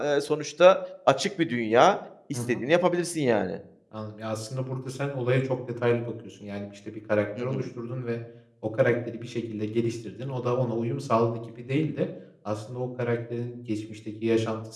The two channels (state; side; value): identical; both; correlation 1.00